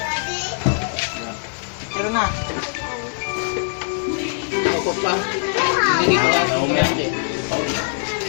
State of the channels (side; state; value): right; silent; 64 dB below the other